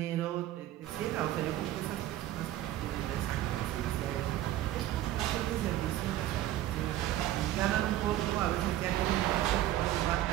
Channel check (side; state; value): left; quieter; 13.8 dB